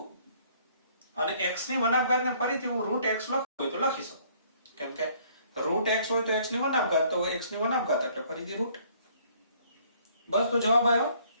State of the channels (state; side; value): inverted; both; correlation -0.61